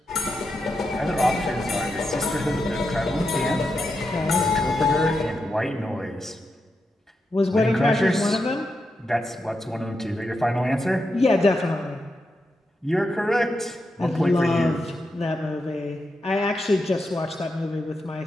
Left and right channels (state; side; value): normal; both; correlation 0.86